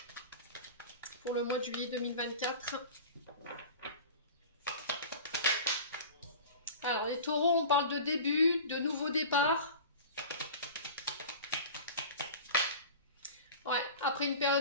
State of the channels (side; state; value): both; inverted; correlation -0.36